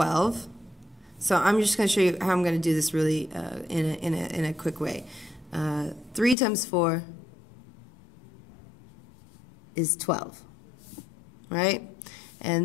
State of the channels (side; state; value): right; drops out; at 6.4 s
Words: So I'm just going to show you how I'm going to do this really in a quick way. 3 times 4 is 12. Right?